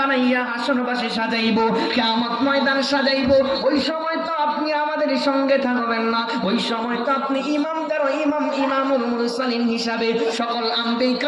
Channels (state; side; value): identical; both; correlation 1.00